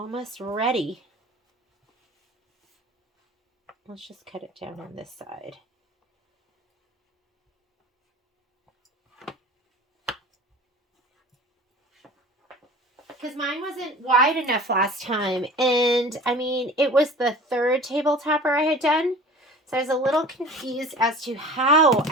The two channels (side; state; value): both; normal; correlation 0.41